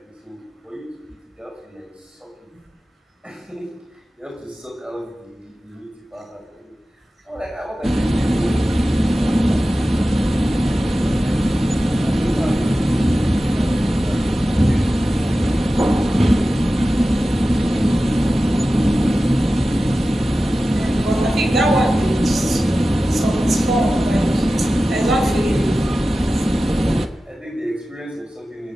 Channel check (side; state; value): both; normal; correlation 0.95